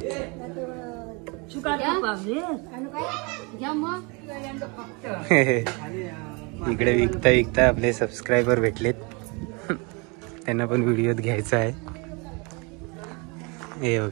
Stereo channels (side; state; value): left; quieter; 30.2 dB